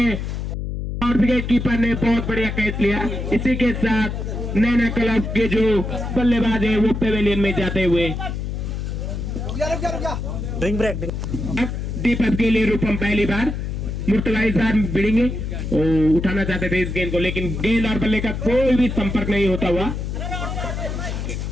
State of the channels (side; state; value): left; noise; hum, 4 dB below the sound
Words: और विकेट कीपर ने बहुत बढ़िया कैच लिया। इसी के साथ नैना क्लब के जो बल्लेबाज है वो पेवेलियन में जाते हुए दीपक के लिए रूपम पहली बार मुर्तला इस बार भिड़ेंगे उठाना चाहते थे इस गेंद को लेकिन गेंद और बल्ले का कोई भी संपर्क नहीं होता हुआ।